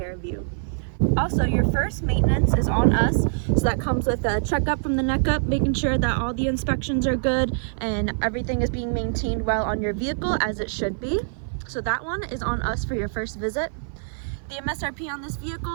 of you. Also, your first maintenance is on us, so that comes with a checkup from the neck up, making sure that all the inspections are good and everything is being maintained well on your vehicle as it should be. So that one is on us for your first visit. The MSRP on this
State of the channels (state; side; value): silent; left; 57 dB below the other